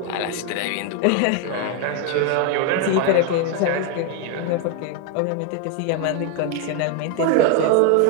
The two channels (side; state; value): both; different; correlation 0.01